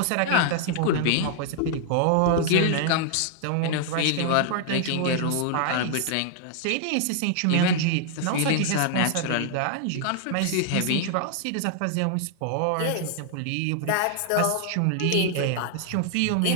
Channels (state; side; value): different; both; correlation 0.00